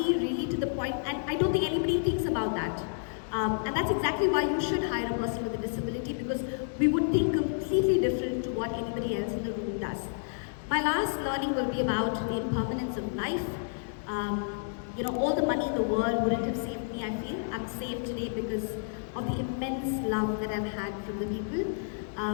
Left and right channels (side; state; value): right; silent; digital silence